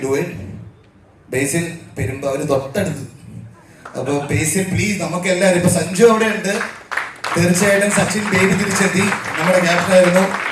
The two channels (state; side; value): identical; both; correlation 1.00